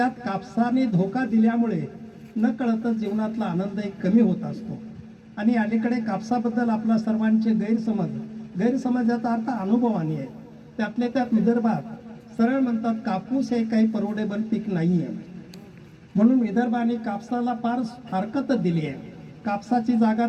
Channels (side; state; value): both; identical; correlation 1.00